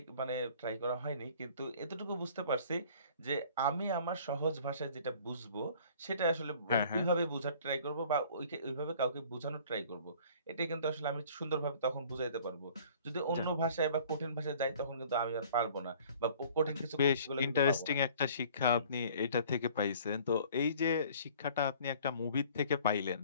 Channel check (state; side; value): inverted; both; correlation -0.52